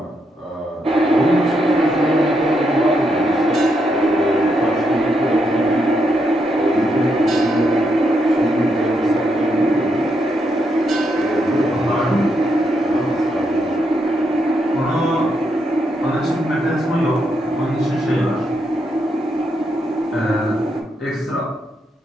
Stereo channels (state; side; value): normal; both; correlation 0.80